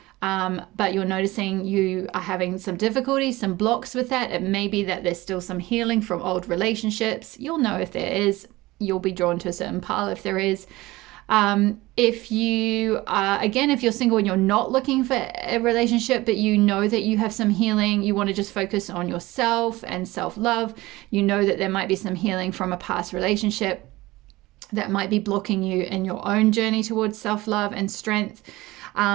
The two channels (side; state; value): left; quieter; 19.5 dB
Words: but you're noticing you are having some difficulties, some blocks with that. It may be that there's still some healing from old relationships. You'll know if there is. You'll be drawn to a certain pile if there is. If you're single and you're not looking for a relationship, but you know that you have some healing, you want to just focus on yourself and self-love, you know that there might be some healing from a past relationship that might be blocking you in your own journey towards self-love and strength.